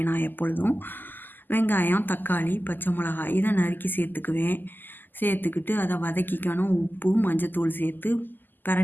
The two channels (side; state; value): right; late; 0.090 ms